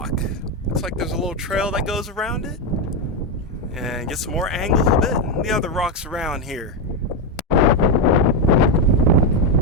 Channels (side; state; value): both; normal; correlation 0.06